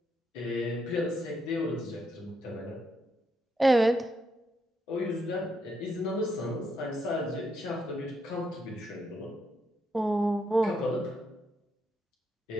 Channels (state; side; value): normal; both; correlation 0.79